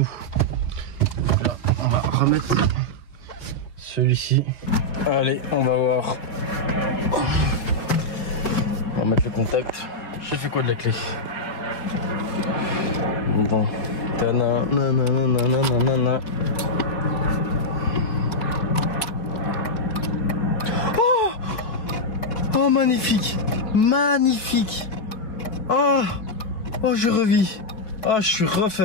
Voilà, on va remettre celui-ci. Allez, on va voir. On va mettre le contact. J'ai fait quoi de la clé? Bon. Ta-na-na-na-na-na-na-na. Oh, magnifique, magnifique. Oh, oh, je revis. Oh, je suis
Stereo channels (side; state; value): right; late; 4.8 ms